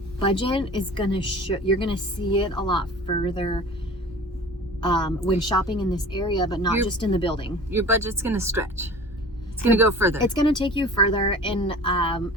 budget is gonna you're gonna see it a lot further when shopping in this area, but not just in the building. Your budget's going to stretch. It's going to go further. It's going to take you further, and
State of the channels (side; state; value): both; normal; correlation 0.40